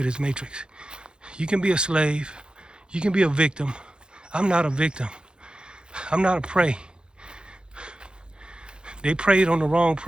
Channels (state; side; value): late; left; 0.049 ms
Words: this matrix. You can be a slave. You can be a victim. I'm not a victim. I'm not a prey. They preyed on the wrong